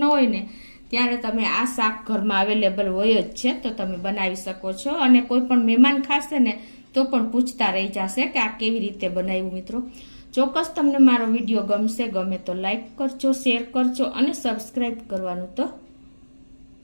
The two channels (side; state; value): both; inverted; correlation -1.00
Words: હોય ને ત્યારે તમે આ શાક ઘરમાં અવેલેબલ હોય જ છે, તો તમે બનાવી શકો છો. અને કોઈ પણ મહેમાન ખાશે ને તો પણ પૂછતા રહી જશે કે આ કેવી રીતે બનાવ્યું. મિત્રો ચોક્કસ તમને મારો વિડીયો ગમે તો લાઈક કરજો, શેર કરજો અને સબસ્ક્રાઈબ કરવાનું તો